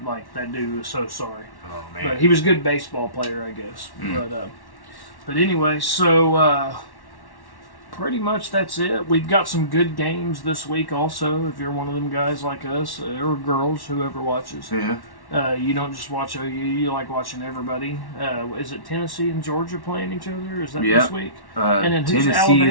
Like, that dude was so sorry. Oh man. But he was a good baseball player, I guess. But anyway, so pretty much that's it. We've got some good games this week also, if you're one of them guys like us, or girls, whoever watches. Yeah. You don't just watch OU, you like watching everybody. Is it Tennessee and Georgia playing each other? Is that this week? And then who's Tennessee Alabama?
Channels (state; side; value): late; right; 1.1 ms